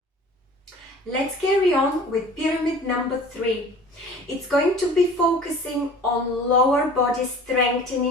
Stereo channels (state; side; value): normal; both; correlation 0.44